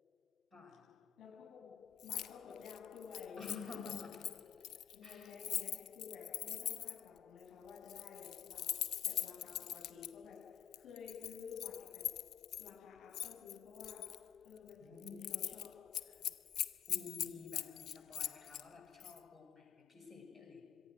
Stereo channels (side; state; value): right; quieter; 9.5 dB